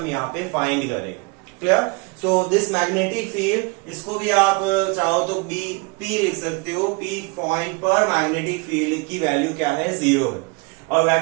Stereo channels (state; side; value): quieter; left; 29.6 dB